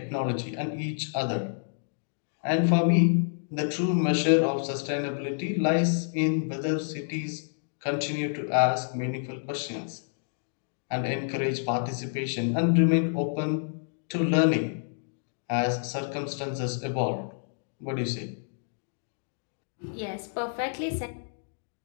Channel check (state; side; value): silent; right; digital silence